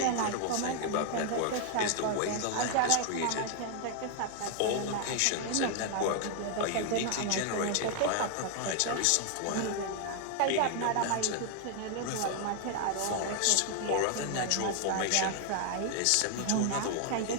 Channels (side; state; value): both; different; correlation 0.00